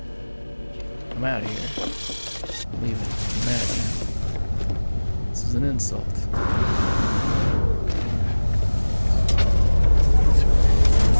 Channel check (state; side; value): inverted; both; correlation -1.00